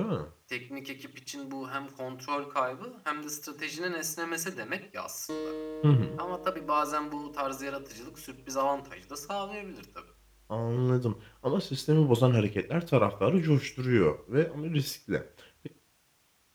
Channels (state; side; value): identical; both; correlation 1.00